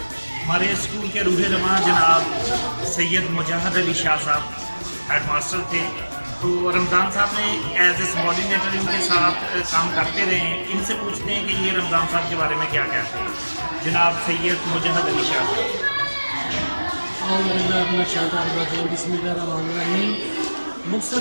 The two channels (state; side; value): inverted; both; correlation -1.00